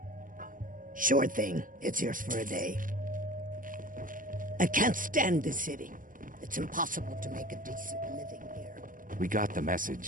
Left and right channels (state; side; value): late; left; 0.39 ms